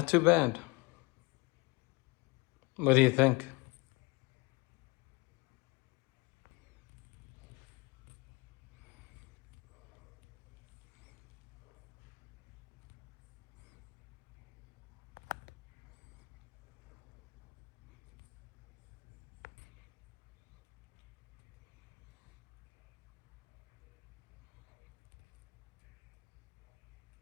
too bad. What do you think?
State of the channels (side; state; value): right; quieter; 25.9 dB